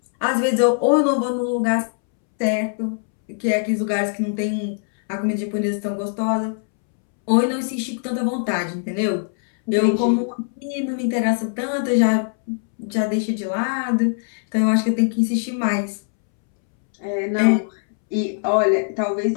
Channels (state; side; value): silent; right; 65 dB below the other